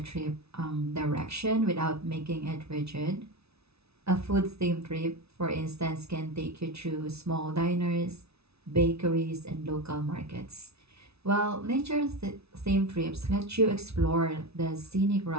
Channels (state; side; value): late; left; 0.79 ms